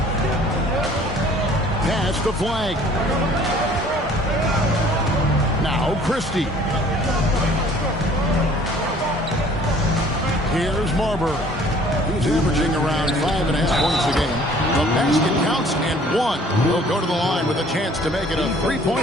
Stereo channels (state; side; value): normal; both; correlation 0.54